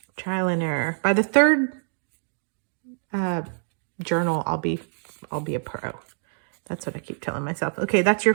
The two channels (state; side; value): silent; left; digital silence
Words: trial and error. By the third journal, I'll be a pro. That's what I keep telling myself. Okay, that's your